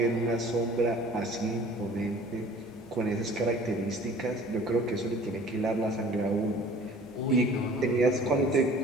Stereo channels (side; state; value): both; normal; correlation 0.48